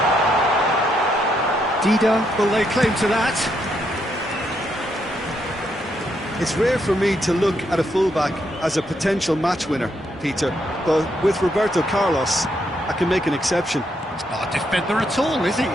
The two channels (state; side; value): normal; both; correlation 0.77